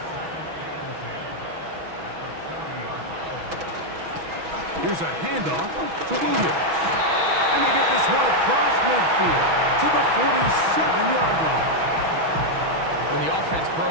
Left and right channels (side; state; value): left; late; 6.2 ms